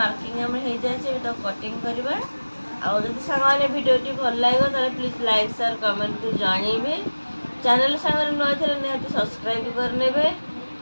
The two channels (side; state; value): both; inverted; correlation -1.00